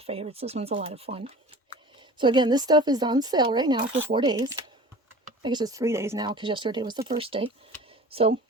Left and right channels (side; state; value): both; normal; correlation 0.41